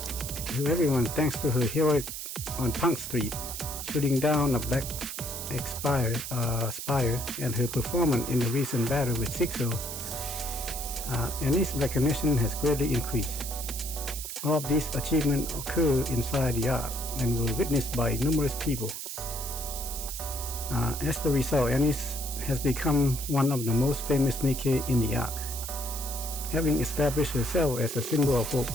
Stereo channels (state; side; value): noise; right; hiss, 7 dB below the sound